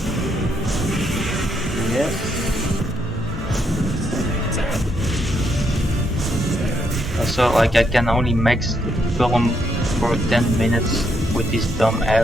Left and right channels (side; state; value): both; normal; correlation 0.76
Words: Yes. Also, like, I can only max film for 10 minutes with this dumb